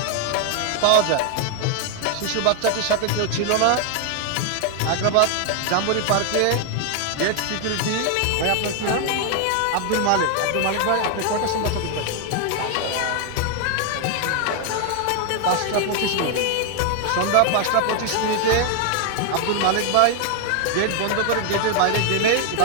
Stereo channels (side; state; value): both; different; correlation 0.00